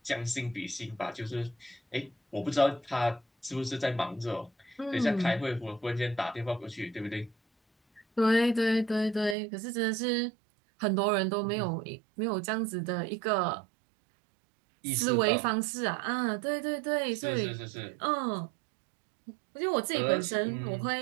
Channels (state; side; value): drops out; left; at 9.3 s